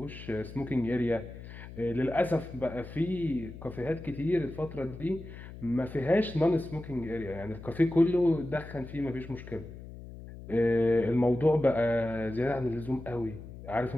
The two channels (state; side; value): noise; left; hum, 14 dB below the sound